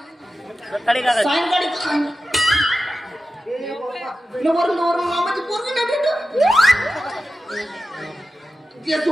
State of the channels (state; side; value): normal; both; correlation 0.93